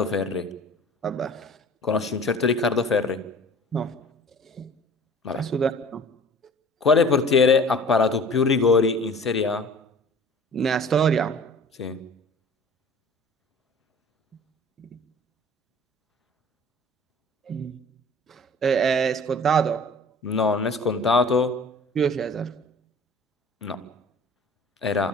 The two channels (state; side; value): normal; both; correlation 0.45